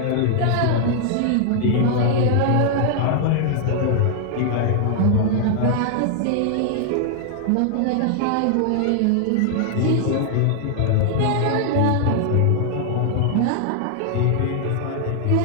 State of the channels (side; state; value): both; different; correlation 0.00